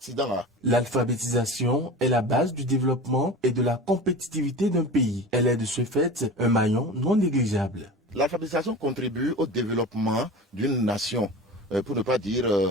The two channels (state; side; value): normal; both; correlation 0.33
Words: L'alphabétisation est la base du développement et de la compétitivité d'un pays. Elle est de ce fait un maillon non négligeable. L'alphabétisation contribue au développement d'une nation, pour ne pas dire